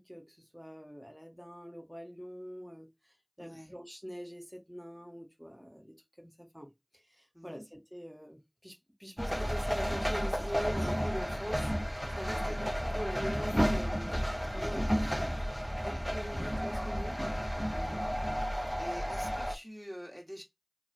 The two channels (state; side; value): identical; both; correlation 1.00